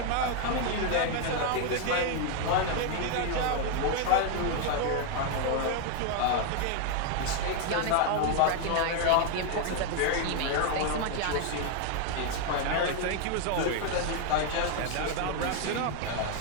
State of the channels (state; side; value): different; both; correlation 0.00